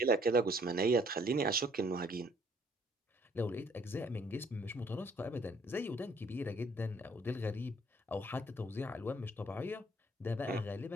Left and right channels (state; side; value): normal; both; correlation 0.62